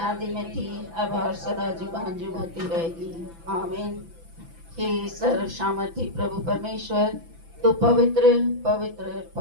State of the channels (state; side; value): late; left; 6.0 ms